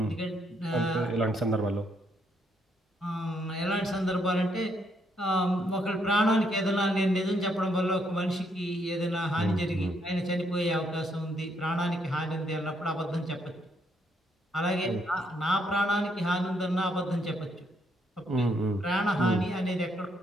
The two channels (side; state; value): both; normal; correlation 0.74